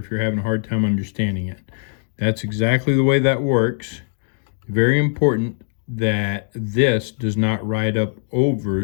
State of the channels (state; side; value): silent; right; 65 dB below the other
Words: you're having a hard time understanding it. That's exactly the way that works. Very important that this does not ride up